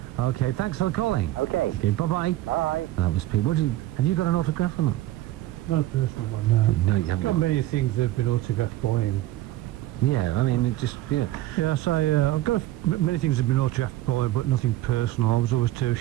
Okay, thanks for calling. Okay. Okay, bye-bye. Bye. That was Pete. Have you got an autograph or not? Not a personal one, no. No, you haven't. Got many things that have been autographed by him. Yeah, I mean, it just, yeah. Yeah, I say, I've got many things that have been autographed by him, but nothing personal. I was always too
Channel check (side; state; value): left; quieter; 15.3 dB